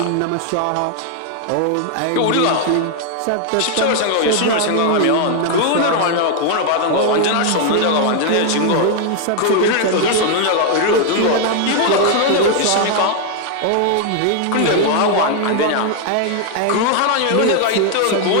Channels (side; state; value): both; different; correlation 0.00